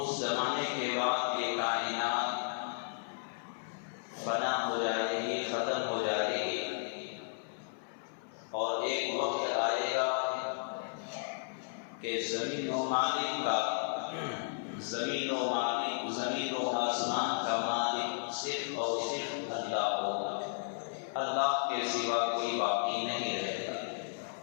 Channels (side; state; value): right; silent; 55 dB below the other